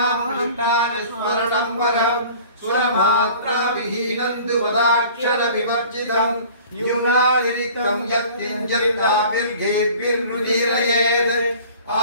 पृष्ठानि स्मरणं वरम् सुरमात्रा विहीनं तु पदाक्षरविवर्जितं न्यूनातिरिक्तं यत्किञ्चिदाभिर्घेभिर्नुदीरयेत्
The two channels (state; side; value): inverted; both; correlation -0.46